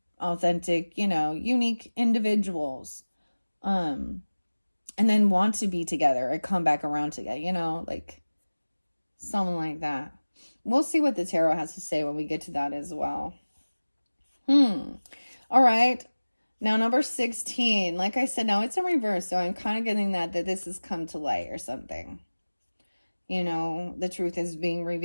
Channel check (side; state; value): both; inverted; correlation -1.00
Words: authentic, unique individuals. And then want to be together or come back around together, like something like that. We'll see what the tarot has to say when we get to that as well. All right. Now, number 16, like I said, now it's in reverse. So I'm kind of getting that this has come to light or something. The truth is being